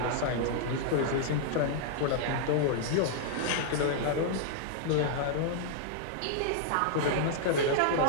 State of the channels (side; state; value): both; different; correlation -0.01